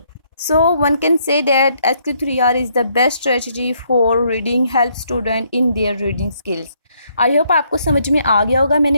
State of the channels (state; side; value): inverted; both; correlation -0.71